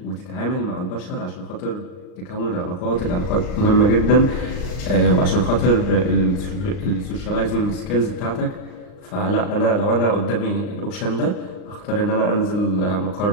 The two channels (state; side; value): late; right; 39 ms